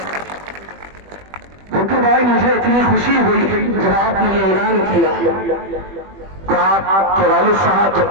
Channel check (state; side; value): late; left; 21 ms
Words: भुट्टू भाई, मुझे इतनी खुशी हुई जब आपने ये ऐलान किया कि आपके वालिद साहब जब